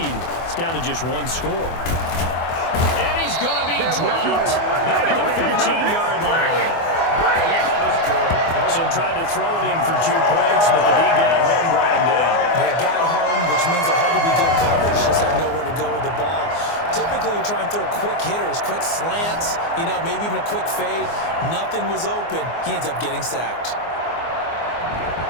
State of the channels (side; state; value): right; late; 24 ms